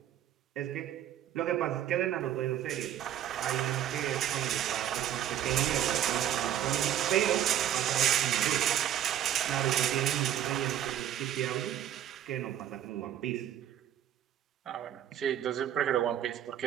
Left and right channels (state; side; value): quieter; left; 11.1 dB